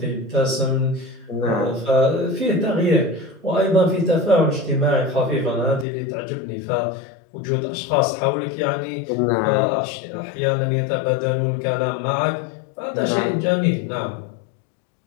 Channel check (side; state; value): right; drops out; at 5.9 s